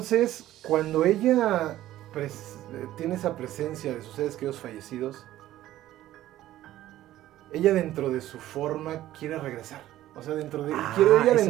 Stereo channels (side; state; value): left; quieter; 14.1 dB